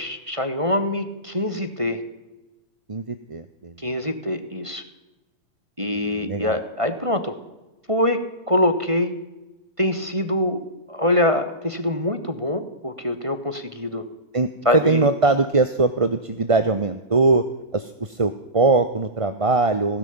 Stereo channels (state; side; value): late; left; 1.5 ms